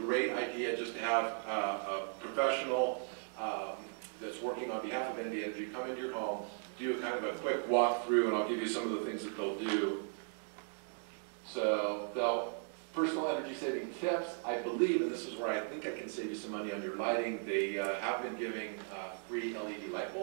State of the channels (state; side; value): silent; left; 53 dB below the other